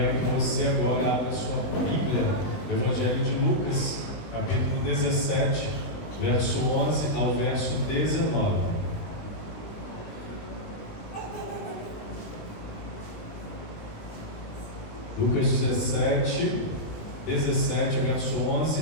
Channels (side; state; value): right; late; 20 ms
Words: que você agora abra a sua Bíblia, do Evangelho de Lucas, capítulo 17, verso 11 ao verso 19. Lucas 17, verso